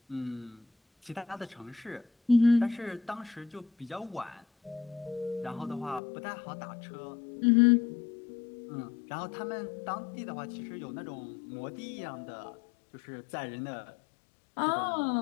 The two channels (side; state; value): right; drops out; at 6.0 s